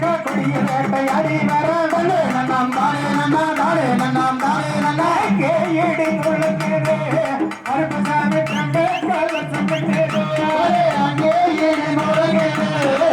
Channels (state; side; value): identical; both; correlation 1.00